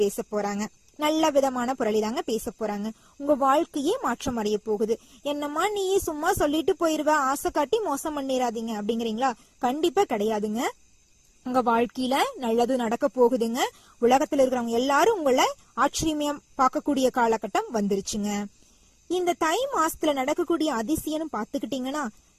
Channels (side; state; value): both; identical; correlation 1.00